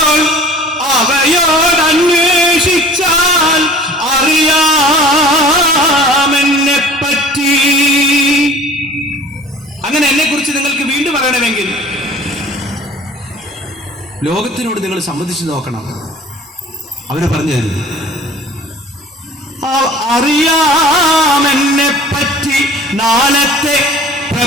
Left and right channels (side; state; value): both; normal; correlation 0.47